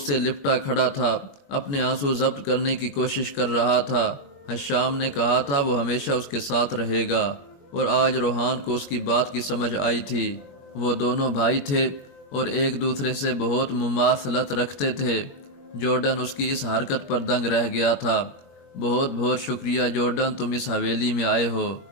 سے لپٹا کھڑا تھا، اپنے آنسو ضبط کرنے کی کوشش کر رہا تھا۔ حشام نے کہا تھا وہ ہمیشہ اس کے ساتھ رہے گا، اور آج روحان کو اس کی بات کی سمجھ آئی تھی۔ وہ دونوں بھائی تھے اور ایک دوسرے سے بہت مماثلت رکھتے تھے۔ جارڈن اس کی اس حرکت پر دنگ رہ گیا تھا۔ بہت بہت شکریہ جارڈن، تم اس حویلی میں آئے ہو،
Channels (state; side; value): late; right; 21 ms